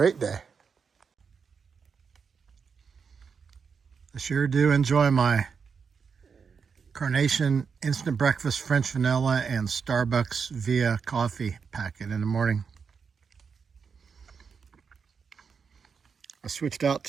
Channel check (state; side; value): quieter; left; 6.0 dB